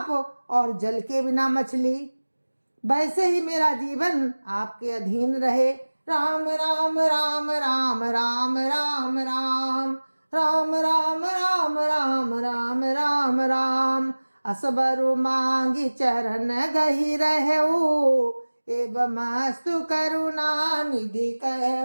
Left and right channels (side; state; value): both; inverted; correlation -1.00